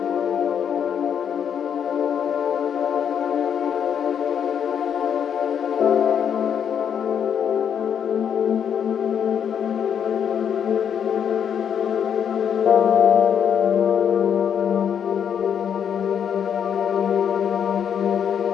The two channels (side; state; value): right; quieter; 8.2 dB